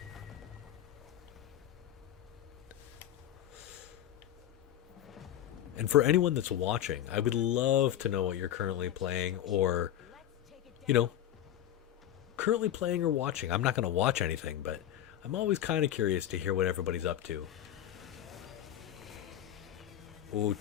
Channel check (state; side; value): quieter; right; 11.4 dB